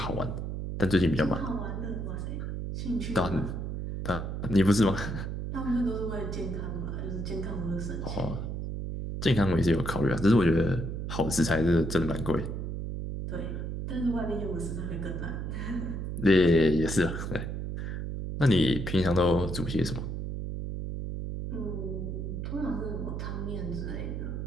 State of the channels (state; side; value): noise; right; hum, 4 dB below the sound